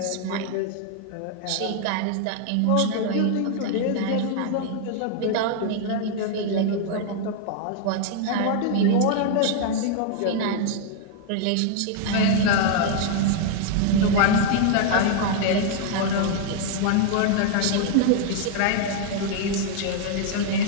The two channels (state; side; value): different; both; correlation 0.00